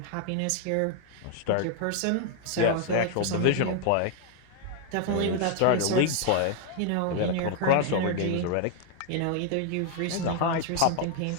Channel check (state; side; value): different; both; correlation 0.00